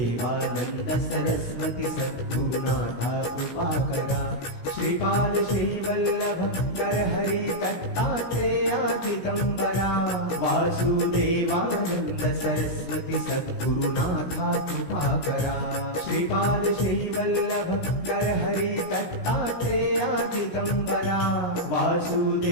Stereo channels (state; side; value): late; right; 16 ms